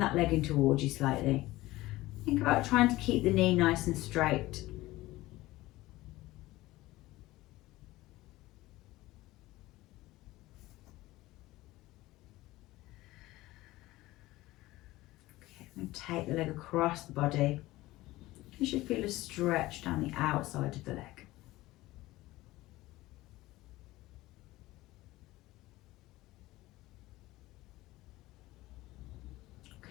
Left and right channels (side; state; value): right; quieter; 18.1 dB